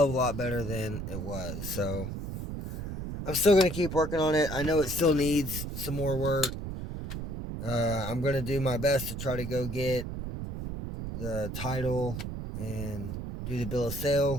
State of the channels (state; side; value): noise; right; rumble, 6 dB below the sound